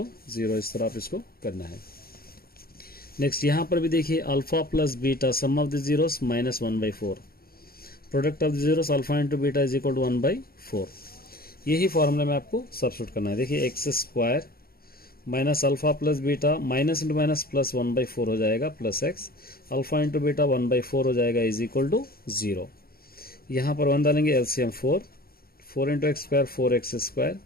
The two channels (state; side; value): late; right; 0.44 ms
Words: 0। इस तरह आप इसको करना है। नेक्स्ट यहाँ पर भी देखिए alpha plus beta sum of the zeros minus 1/4। Product of the zeros alpha into beta is equal to 1/4। यही फॉर्मूला में आपको सब्स्टिट्यूट करना है। देखिए x square minus alpha plus beta minus into minus plus 1/4 हो जाएगा plus x alpha into beta 1/4 हो जाएगा इज इक्वल टू 0। यहाँ पर 1 डालेंगे, LCM 4 into x square 4x square,